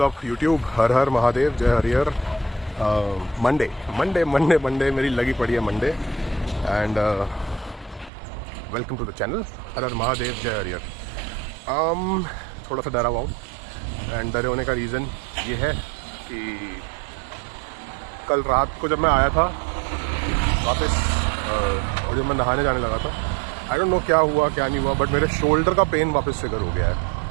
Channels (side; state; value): left; drops out; at 8.1 s